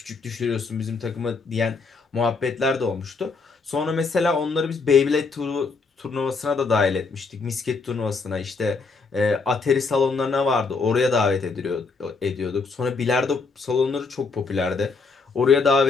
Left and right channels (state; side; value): quieter; right; 4.4 dB